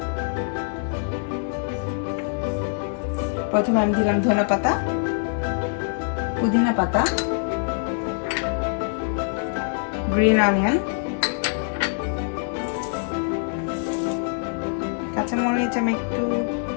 প্রথমে আমি দিলাম ধনে পাতা, পুদিনা পাতা, গ্রিন অনিয়ন, কাঁচামরিচ আমি একটু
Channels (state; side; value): silent; right; 62 dB below the other